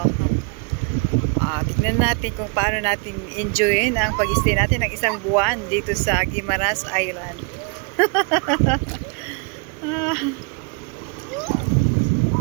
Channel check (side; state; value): left; quieter; 33.5 dB